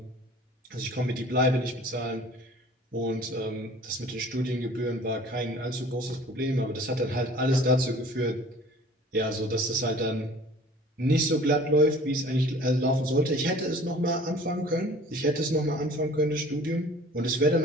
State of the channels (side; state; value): both; normal; correlation 0.48